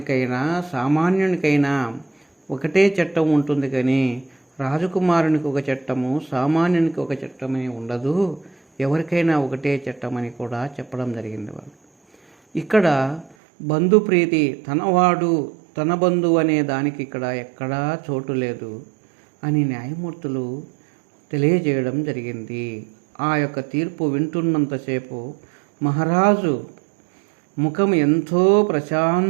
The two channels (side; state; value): left; drops out; at 13.4 s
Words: సామాన్యునికైనా ఒకటే చట్టం ఉంటుంది, కానీ రాజకుమారునికి ఒక చట్టము, సామాన్యునికి ఒక చట్టమని ఉండదు. ఎవరికైనా ఒకటే చట్టమని కూడా చెప్పడం జరిగింది వాళ్ళు. ఇక్కడ బంధుప్రీతి, తనవాడు తన బంధువు అనే దానికి ఇక్కడ ఎక్కడా చోటు లేదు అని న్యాయమూర్తులు తెలియజేయడం జరిగింది. ఆ యొక్క తీర్పు వింటున్నంతసేపు మహారాజు ముఖం ఎంతో